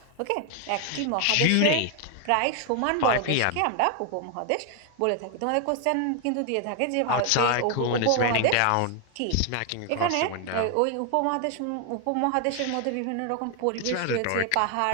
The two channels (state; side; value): different; both; correlation 0.00